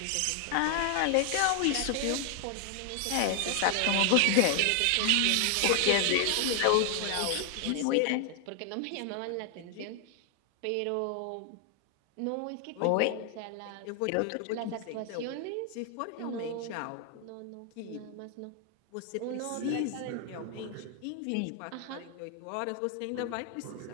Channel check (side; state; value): both; different; correlation 0.00